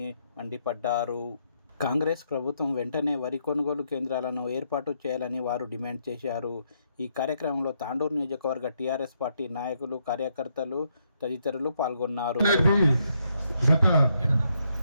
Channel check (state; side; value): inverted; both; correlation -0.76